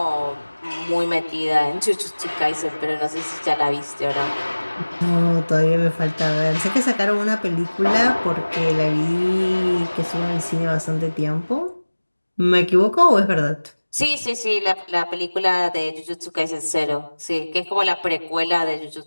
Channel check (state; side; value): inverted; both; correlation -1.00